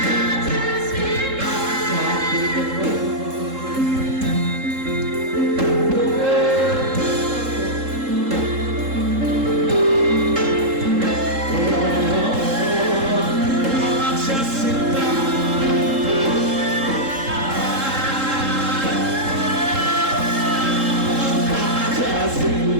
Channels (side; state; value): left; late; 3.7 ms